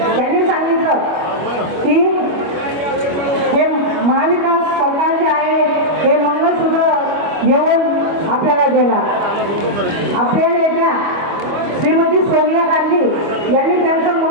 त्यांनी सांगितलं की हे महाविकास सरकार जे आहे हे मंगळसूत्र घेऊन आपल्याला देणार. आपल्या नेत्या श्रीमती सोनिया गांधी यांनी त्यांचं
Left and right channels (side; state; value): left; late; 25 ms